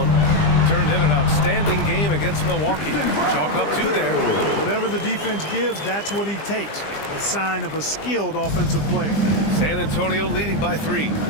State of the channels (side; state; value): right; late; 20 ms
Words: Turned in an outstanding game against Milwaukee. Chalk up 2 there. Whatever the defense gives, that's what he takes. A sign of a skilled offensive player. San Antonio leading by 3.